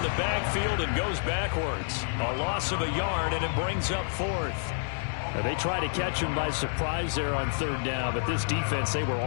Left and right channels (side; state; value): right; silent; 57 dB below the other